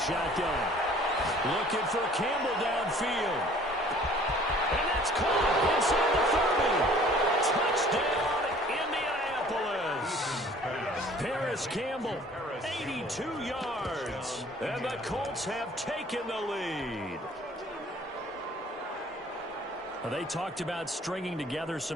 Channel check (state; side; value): normal; both; correlation 0.52